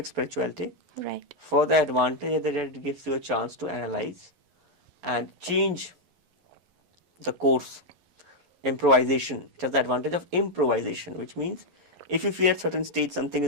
spirituality. Right. For the advantage that it gives you a chance to analyze and change the course. Improvisation. It has the advantage of improvisation, which means if you feel at certain stage something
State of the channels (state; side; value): late; left; 11 ms